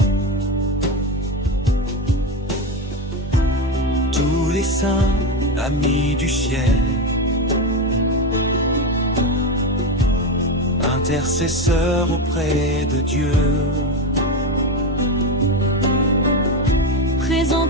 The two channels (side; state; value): both; normal; correlation 0.15